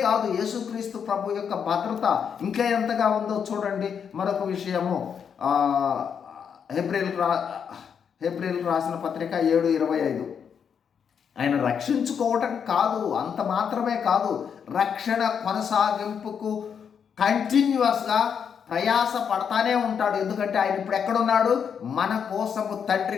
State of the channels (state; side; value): quieter; right; 7.3 dB